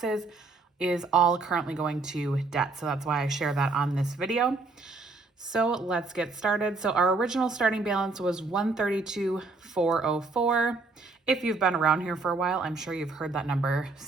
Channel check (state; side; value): quieter; left; 3.7 dB